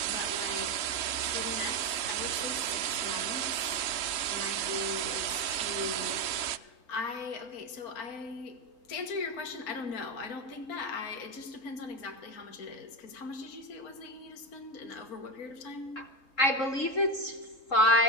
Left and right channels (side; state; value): right; late; 3.8 ms